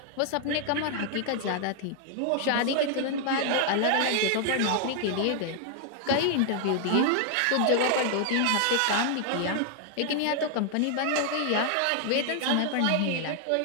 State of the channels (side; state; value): both; different; correlation 0.00